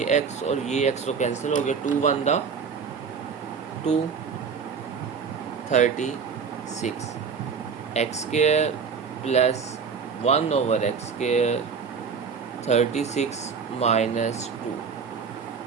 x और ये x तो कैंसिल हो गया, 2 1 दा 2 36 x square plus 1/x square 36 minus 2।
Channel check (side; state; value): left; quieter; 6.0 dB